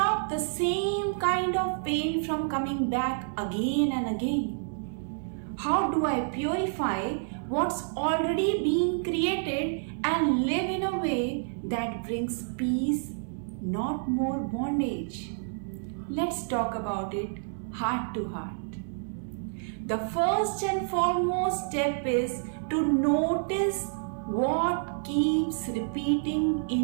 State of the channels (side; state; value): left; silent; digital silence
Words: the same kind of pain from coming back again and again? How do I purify what's already being created and live in a way that brings peace, not more bondage? Let's talk about it heart to heart. The first and foremost step is to notice what keeps repeating